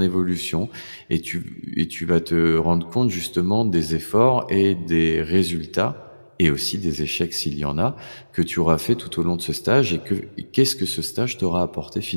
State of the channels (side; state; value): both; inverted; correlation -1.00